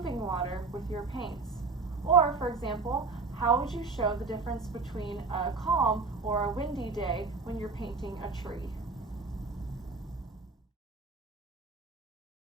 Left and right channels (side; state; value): left; quieter; 4.2 dB